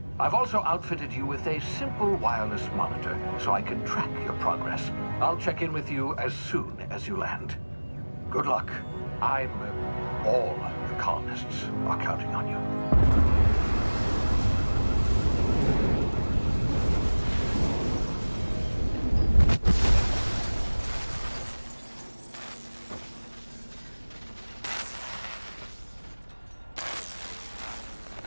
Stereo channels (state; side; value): inverted; both; correlation -1.00